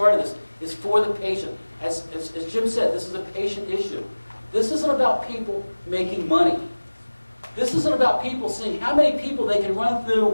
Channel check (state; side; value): inverted; both; correlation -1.00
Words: this, is for the patient. As Jim said, this is a patient issue. This isn't about people making money. This isn't about people seeing how many people they can run